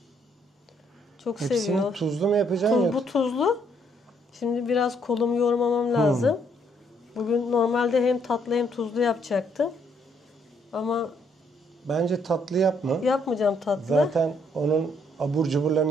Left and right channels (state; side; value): normal; both; correlation 0.70